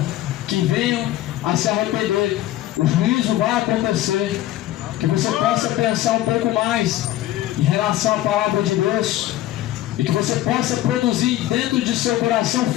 que venham a se arrepender. O juízo vai acontecer. Que você possa pensar um pouco mais em relação à palavra de Deus, e que você possa produzir dentro de seu coração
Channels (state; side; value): quieter; right; 14.4 dB